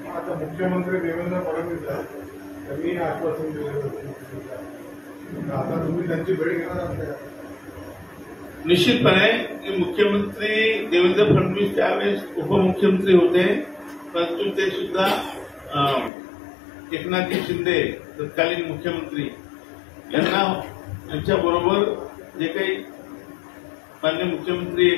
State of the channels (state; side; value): drops out; right; at 16.1 s